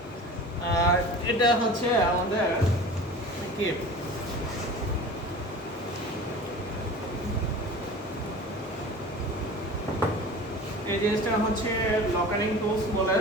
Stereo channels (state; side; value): normal; both; correlation 0.37